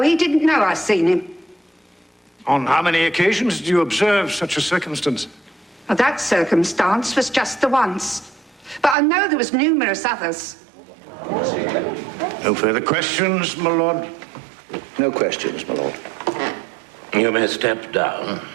he didn't know I seen him. On how many occasions did you observe such a circumstance? Well, that circumstance was just the once. But I know there was numerous others. No further questions, my lord? No questions, my lord. You may step down.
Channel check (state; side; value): drops out; left; at 9.0 s